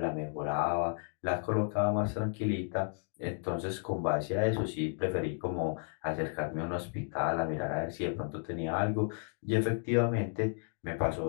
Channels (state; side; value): silent; right; 56 dB below the other